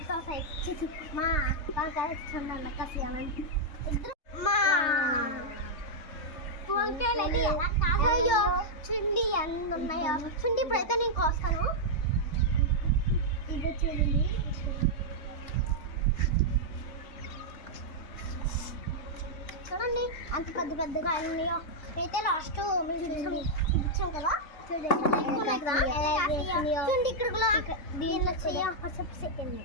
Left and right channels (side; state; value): right; late; 3.3 ms